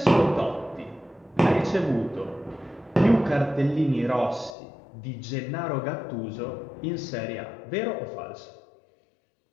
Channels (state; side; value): drops out; right; at 4.5 s